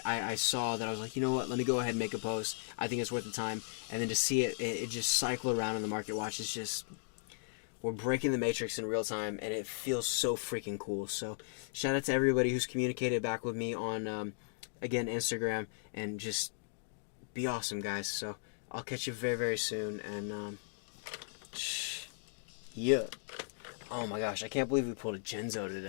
I saw that I was like, you know what, let me go ahead and make a post. I think it's worth the time. And then to see it just cycle around in the market watch is just, we're breaking the matrix in real time, and it feels so freaking cool. So shout out to everybody who's communicated back with me on, again, Instagram, and just be awesome, guys. So I'll catch you very, very soon, and yeah. Oh my gosh, I can't believe we pulled a Genzo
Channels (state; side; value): silent; right; digital silence